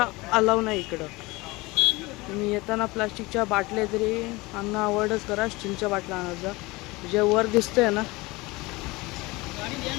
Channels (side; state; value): right; quieter; 22.7 dB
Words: अलाव नाही इकडं. तुम्ही येताना प्लास्टिकच्या बाटल्या तरी आणणं अवॉइडच करा. स्टीलच्या बाटल्या आणायचा. जे वर दिसतंय ना